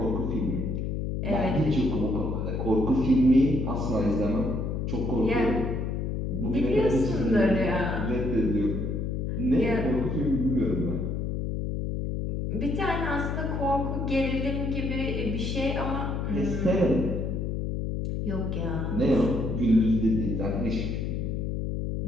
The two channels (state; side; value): noise; left; hum, 1 dB below the sound